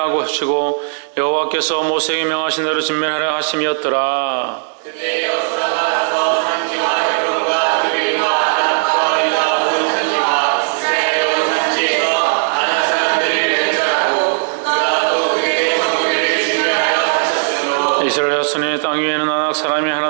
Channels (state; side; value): silent; left; digital silence